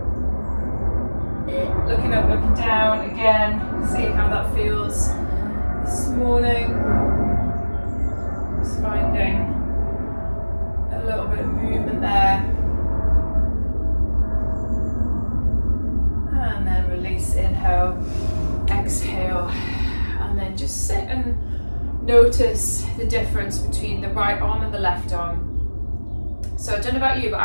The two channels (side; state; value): both; inverted; correlation -1.00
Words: Looking up, looking down again. Seeing how that feels this morning. Just finding a little bit of movement there. And then release, inhale, exhale, and then just sit and notice the difference between the right arm and the left arm. So I don't know about you, but